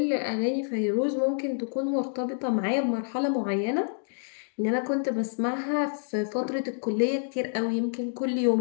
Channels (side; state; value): right; silent; digital silence